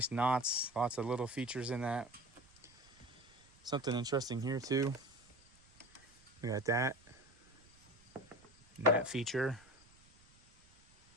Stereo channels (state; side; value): noise; right; rumble, 28 dB below the sound